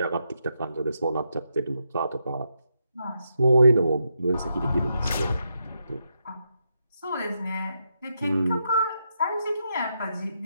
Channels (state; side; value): inverted; both; correlation -0.81